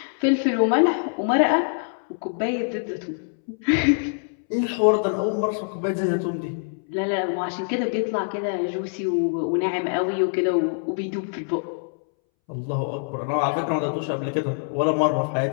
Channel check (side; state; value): right; silent; 62 dB below the other